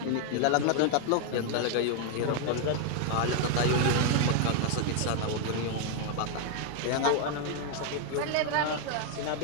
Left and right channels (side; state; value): both; different; correlation 0.00